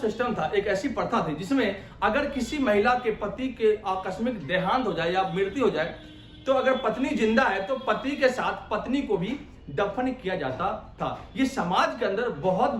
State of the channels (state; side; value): identical; both; correlation 1.00